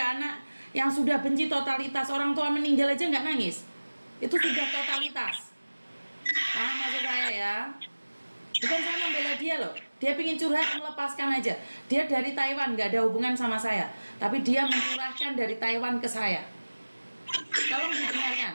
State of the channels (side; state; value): both; inverted; correlation -1.00